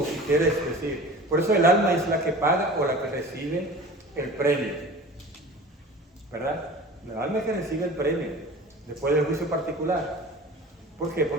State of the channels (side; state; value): both; normal; correlation 0.39